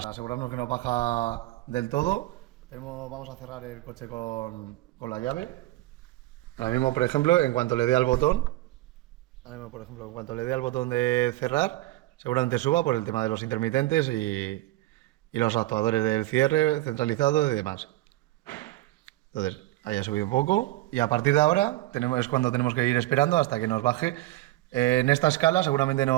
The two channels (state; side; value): quieter; left; 17.3 dB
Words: que no baja del todo, vamos a cerrar el coche con la llave. Ahora mismo, por ejemplo, en cuanto le dé al botón, de cerrar, seguramente suba por el tema de los intermitentes y los actuadores del cierre centralizado y demás. Entonces, ahí ha subido un poco y a partir de ahora es cuando tenemos que ir esperando hasta que nos baje. En esta escala seguramente